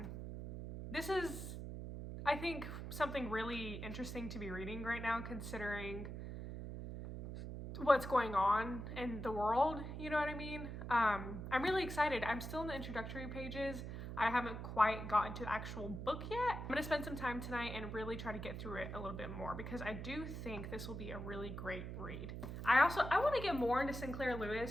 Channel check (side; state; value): right; noise; hum, 7 dB below the sound